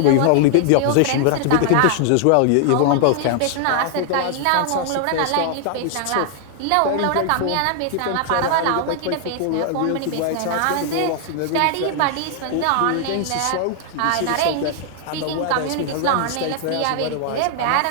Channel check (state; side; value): different; both; correlation 0.00